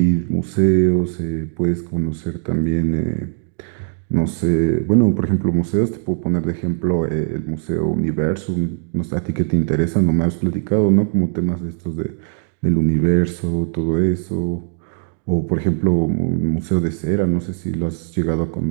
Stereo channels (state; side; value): silent; left; digital silence